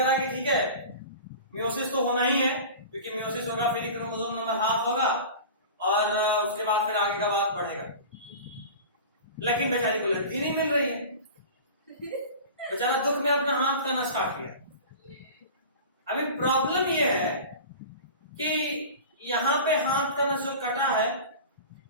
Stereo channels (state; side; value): inverted; both; correlation -0.36